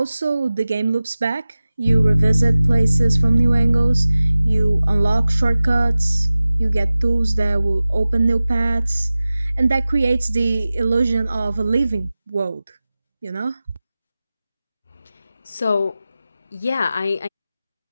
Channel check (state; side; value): inverted; both; correlation -0.97